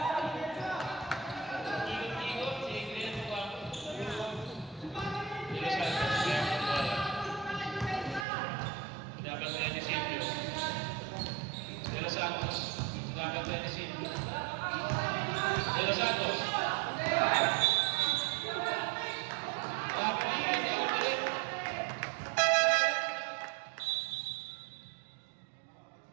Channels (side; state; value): left; drops out; at 8.2 s